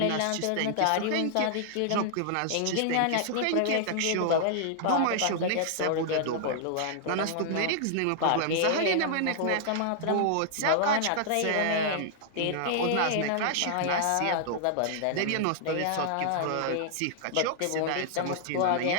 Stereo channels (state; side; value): different; both; correlation -0.01